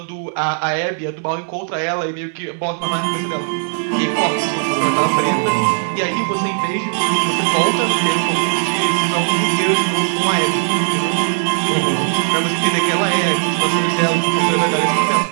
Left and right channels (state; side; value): silent; left; digital silence